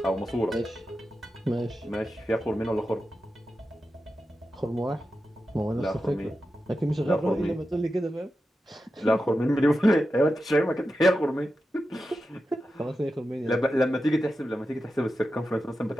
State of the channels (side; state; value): both; normal; correlation 0.91